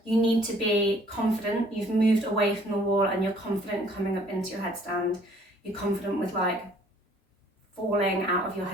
you need to be confident. You've moved away from the wall and you're confident coming up into your headstand. you're confident with like falling out of your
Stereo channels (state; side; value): normal; both; correlation 0.58